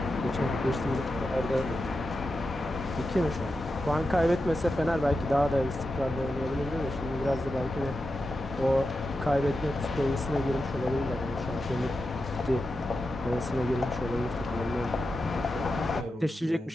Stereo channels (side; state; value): both; normal; correlation 0.89